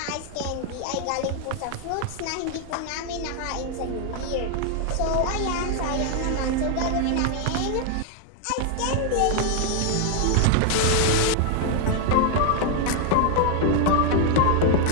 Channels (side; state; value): both; different; correlation 0.00